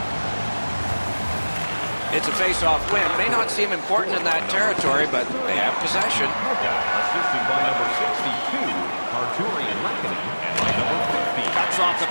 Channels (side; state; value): both; inverted; correlation -1.00